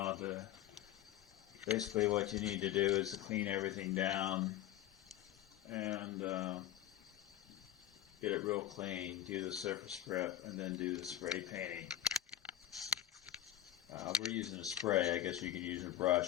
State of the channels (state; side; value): quieter; right; 12.0 dB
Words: to, basically what you need to do is to clean everything down and get it real clean, do the surface prep, and then do the spray painting. We're using a spray. I guess you could use a